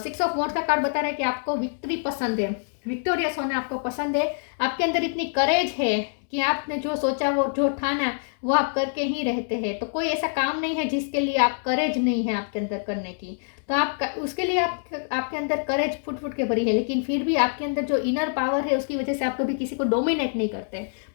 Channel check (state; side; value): silent; right; digital silence